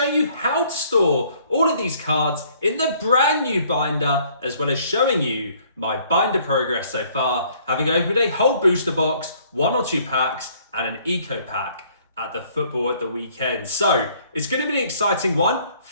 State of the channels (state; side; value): inverted; both; correlation -0.61